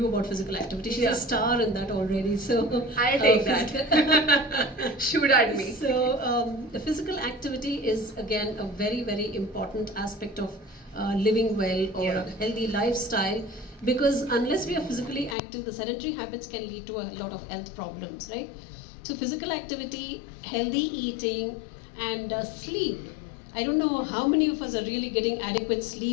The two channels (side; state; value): right; drops out; at 15.4 s